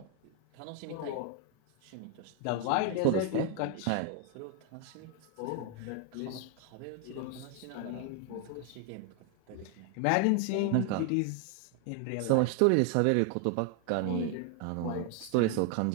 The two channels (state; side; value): different; both; correlation 0.01